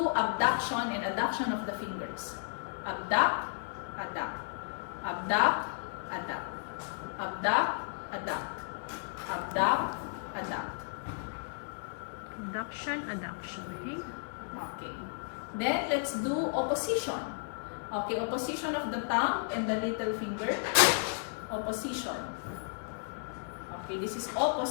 abduction and adduction of the fingers. Abduct, adduct. Abduct, adduct. Abduct, adduct. Abduct, adduct. Adduction, adduction. Okay? Okay. Then let's do opposition. Okay, opposition of the thumb and the little finger. Opposition. Okay, this is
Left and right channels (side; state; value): right; silent; 55 dB below the other